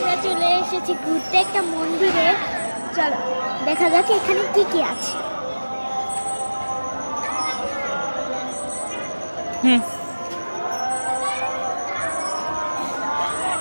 চলে এসেছি ঘুরতে একটা মন্দিরে। চলো দেখা যাক এখানে কি কি আছে।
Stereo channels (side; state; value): both; inverted; correlation -1.00